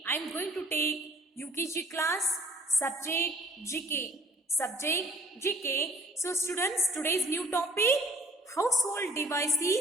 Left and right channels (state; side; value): normal; both; correlation 0.54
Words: I am going to take UKG class subject GK. So students, today's new topic household